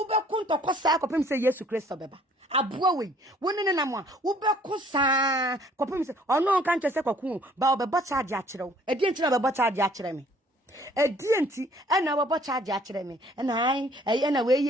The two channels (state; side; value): normal; both; correlation 0.58